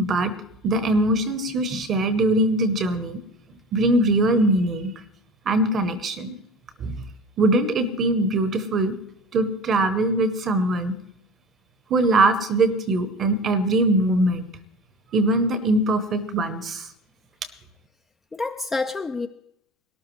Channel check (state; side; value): normal; both; correlation 0.36